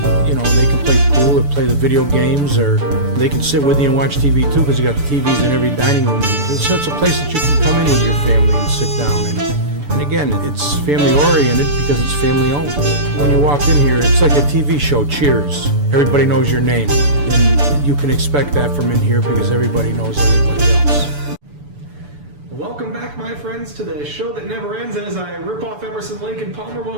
you know, they can play pool or play the video games, or they can sit with you and watch TV too, because you got the TVs in every dining room. It's such a place that you can come in with your family and sit down. And again, it's family oriented because it's family owned. When you walk in here, it's like a TV show, Cheers. Everybody knows your name. And you can expect that from in here because everybody knows everybody else. Welcome back, my friends, to the show that never ends. And as I rip off Emerson, Lake, and Palmer,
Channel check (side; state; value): left; late; 6.9 ms